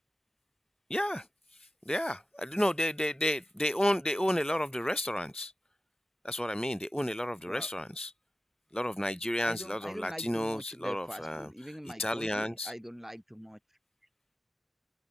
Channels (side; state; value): both; normal; correlation 0.94